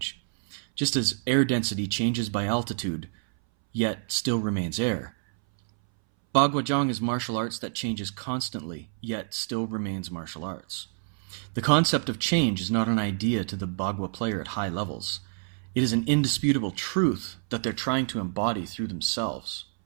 Just as air density changes by altitude, yet still remains air. Bagua is martial arts that changes constantly, yet still remains martial arts. The concept of change is not an idea to the Bagua player at high levels. It is an indisputable truth that they're trying to embody through themselves.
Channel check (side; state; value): left; silent; 60 dB below the other